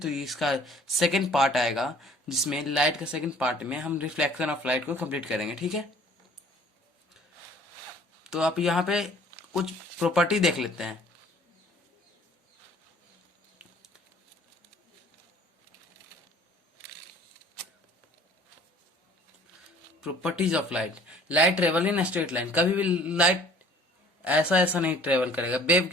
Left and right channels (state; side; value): normal; both; correlation 0.53